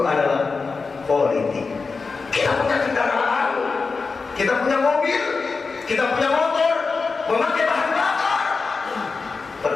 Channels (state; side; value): quieter; right; 4.5 dB